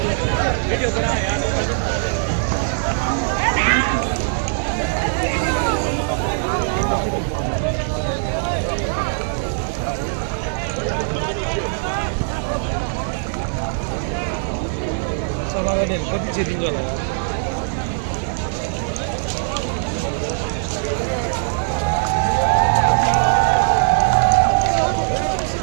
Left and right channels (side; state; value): left; silent; digital silence